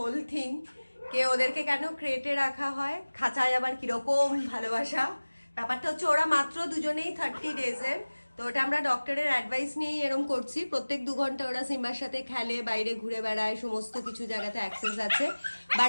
thing কে ওদেরকে কেন ক্রেটে রাখা হয়, খাঁচায় আবার কিরকম ভালোবাসা। ব্যাপারটা হচ্ছে ওরা মাত্র দুজনেই 30 ডেজের, তো ওটা আমরা ডক্টরের অ্যাডভাইস নিয়েই এরম করছি। প্রত্যেক 2 ঘন্টা ওরা সিম্বার সাথে খেলে, বাইরে ঘুরে বেড়ায়, সমস্ত কিছু জায়গাতে অ্যাক্সেস আছে, বাট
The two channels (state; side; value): inverted; both; correlation -1.00